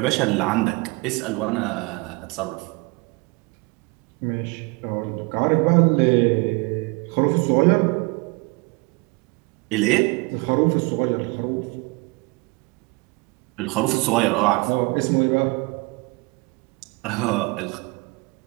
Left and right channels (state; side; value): quieter; left; 26.8 dB